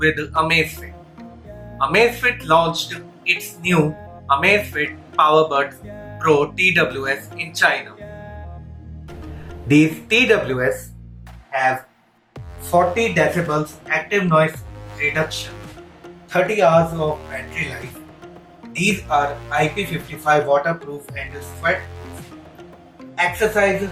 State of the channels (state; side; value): identical; both; correlation 1.00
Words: Amazfit. Amazfit launched its new Amazfit Powerbuds Pro TWS in China. These TWS have 40 decibels active noise reduction, 30 hours of battery life. These are IP55 waterproof and sweat-proof. Exercise